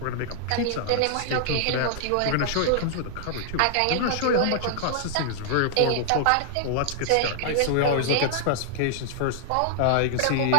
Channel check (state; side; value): different; both; correlation -0.01